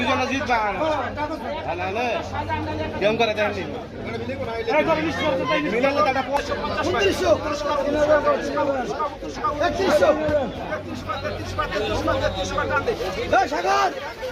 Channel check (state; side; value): identical; both; correlation 1.00